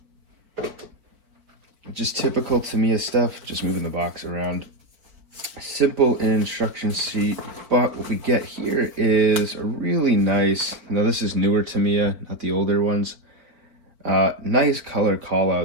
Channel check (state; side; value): late; left; 4.5 ms